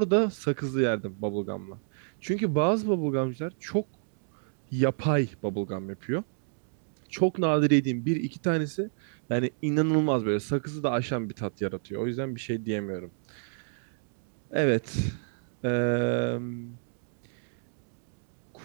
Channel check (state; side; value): silent; left; digital silence